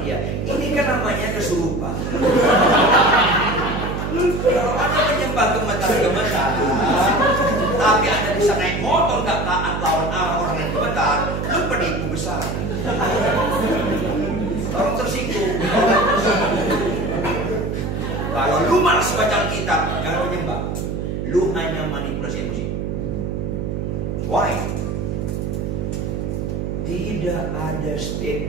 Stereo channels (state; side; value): noise; right; hum, 3 dB below the sound